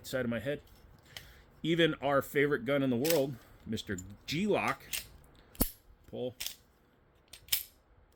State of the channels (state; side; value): identical; both; correlation 1.00